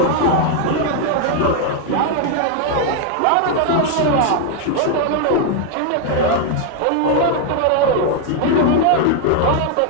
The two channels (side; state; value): both; different; correlation 0.00